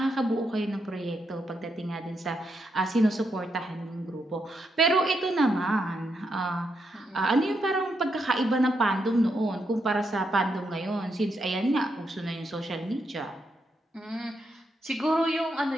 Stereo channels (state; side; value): normal; both; correlation 0.81